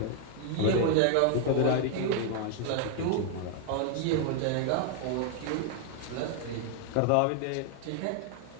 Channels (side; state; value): both; different; correlation 0.00